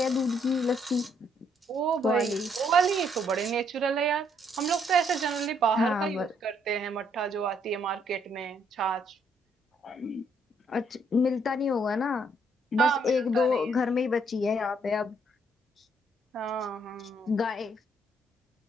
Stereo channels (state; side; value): normal; both; correlation 0.70